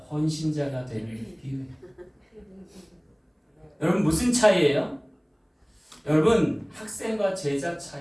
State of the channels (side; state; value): both; identical; correlation 1.00